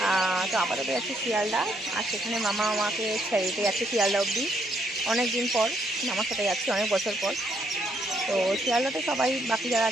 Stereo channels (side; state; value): both; normal; correlation 0.72